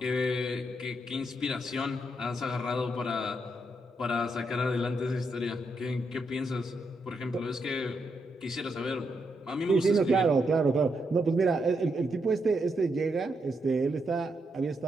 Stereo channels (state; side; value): normal; both; correlation 0.80